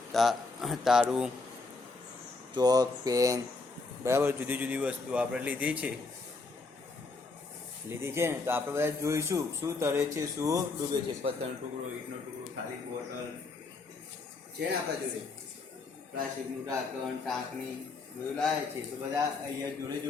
તારું, ચોક, પેન, બરાબર જુદી જુદી વસ્તુ આપણે લીધી છે ને. તો આપણે બધા જોઈશું શું તરે છે શું ડૂબે છે. પથ્થરનો ટુકડો, ઈંટનો ટુકડો, ખાલી બોટલ છે ને આપણા જોડે, પ્લાસ્ટિકનું ઢાંકણ, ટાંકણી બધું લાવે છે. તો બધા અહીંયા જોડે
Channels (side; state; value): right; quieter; 3.8 dB